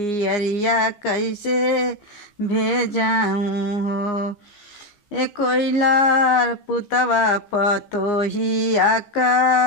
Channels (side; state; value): right; late; 15 ms